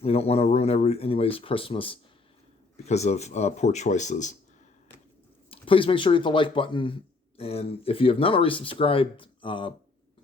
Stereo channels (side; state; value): right; quieter; 3.7 dB